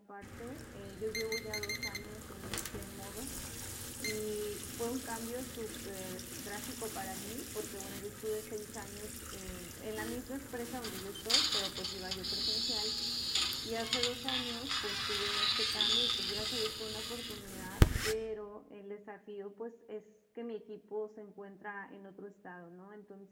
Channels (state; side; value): identical; both; correlation 1.00